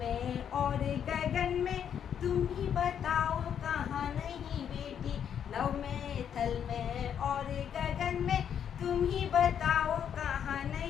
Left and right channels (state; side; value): quieter; right; 8.6 dB